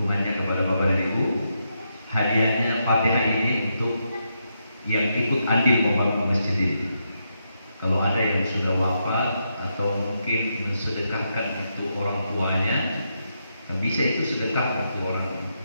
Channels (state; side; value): inverted; both; correlation -0.82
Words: kepada bapak dan ibu. Hadiahnya Fatihah ini untuk yang ikut andil membangun masjid ini. Kalau ada yang sudah wafat atau mungkin mensedekahkan untuk orang tuanya, bisa itu sedekah untuk orang